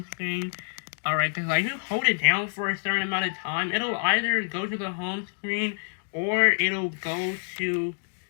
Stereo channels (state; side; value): silent; right; digital silence